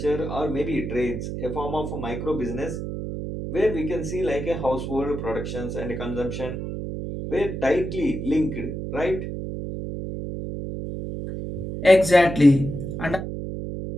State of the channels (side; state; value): right; noise; hum, 6 dB below the sound